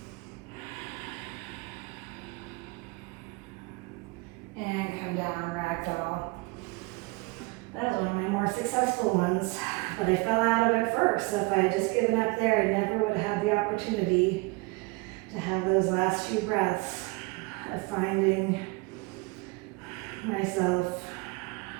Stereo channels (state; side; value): quieter; left; 25.8 dB